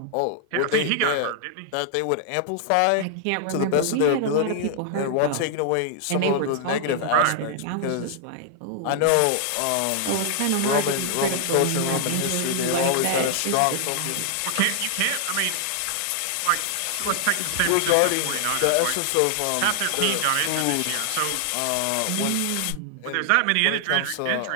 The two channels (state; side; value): different; both; correlation -0.01